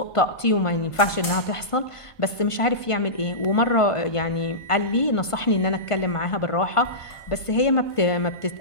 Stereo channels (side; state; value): right; late; 1.5 ms